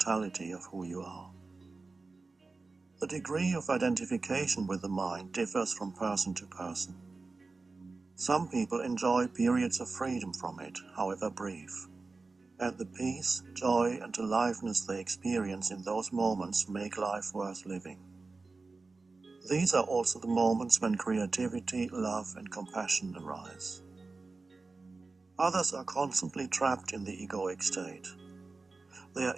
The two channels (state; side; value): quieter; left; 3.8 dB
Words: of who you are. The degree of identification with the mind differs from person to person. Some people enjoy periods of freedom from it, however brief. And the peace, joy, and aliveness they experience in those moments make life worth living. These are also the moments when creativity, love, and compassion arise. Others are constantly trapped in the egoic state. They are